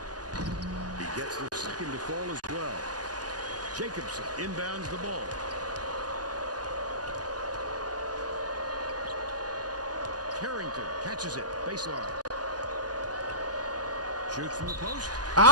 Gets the second to fall as well. Jacobson inbounds the ball. Carrington catches it. Baseline. Shoots from the post.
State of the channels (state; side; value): late; left; 0.68 ms